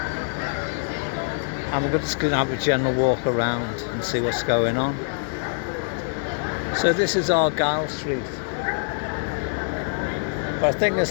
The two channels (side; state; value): right; silent; digital silence